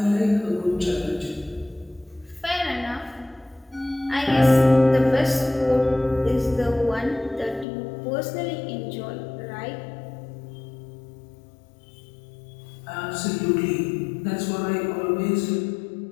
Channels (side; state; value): right; drops out; at 7.7 s